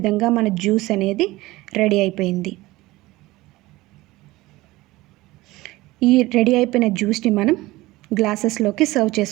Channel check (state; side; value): quieter; left; 19.1 dB